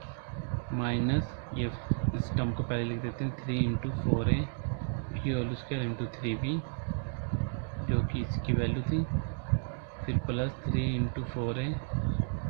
माइनस ये इस टर्म को पहले लिख देते हैं 3 इंटू 4a की होल स्क्वायर इंटू 3b जो कि इसकी वैल्यू थी, फिर plus 3 into 4a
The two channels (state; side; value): silent; left; 56 dB below the other